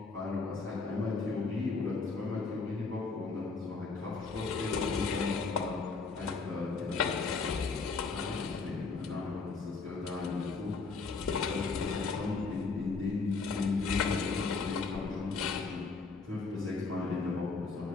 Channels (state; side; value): quieter; right; 4.3 dB